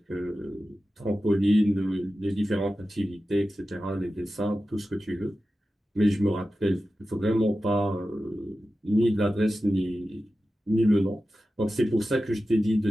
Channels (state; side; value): normal; both; correlation 0.93